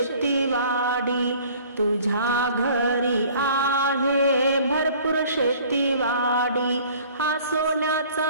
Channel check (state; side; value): inverted; both; correlation -0.51